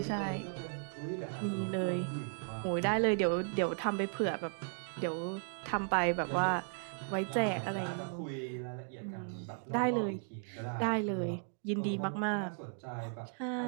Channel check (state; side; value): silent; left; 54 dB below the other